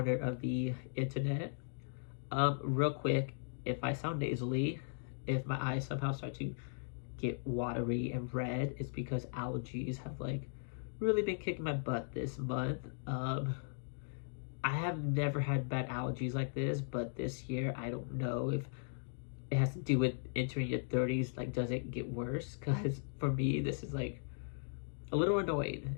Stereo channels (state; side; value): silent; right; digital silence